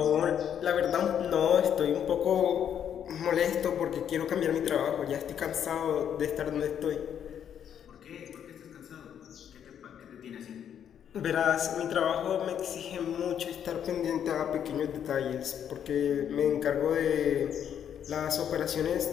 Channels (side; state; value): right; quieter; 9.0 dB